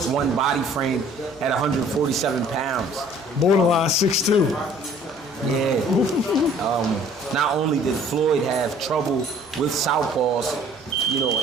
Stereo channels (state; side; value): normal; both; correlation 0.54